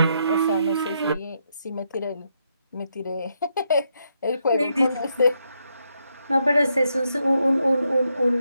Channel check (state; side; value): inverted; both; correlation -0.79